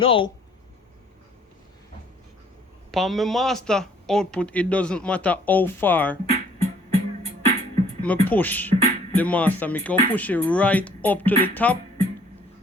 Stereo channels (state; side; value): normal; both; correlation 0.60